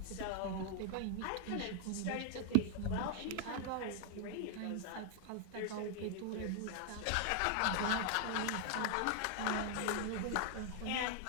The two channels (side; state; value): both; different; correlation 0.00